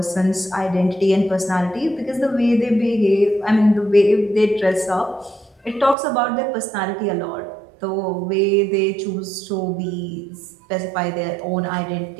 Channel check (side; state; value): left; drops out; at 6.0 s